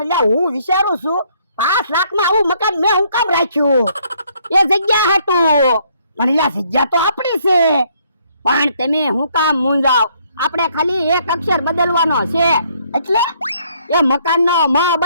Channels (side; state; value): both; inverted; correlation -0.67